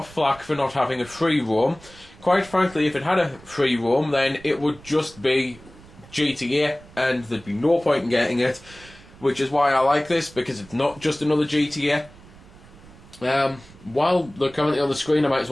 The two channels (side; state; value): right; noise; rumble, 22 dB below the sound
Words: flack for not having a free roam. Quite frankly, if it had a free roam, then it would just be GTA and there'd be no point in getting it, which is why I like this, because it's not just another GTA. While they're currently on the screen, I might as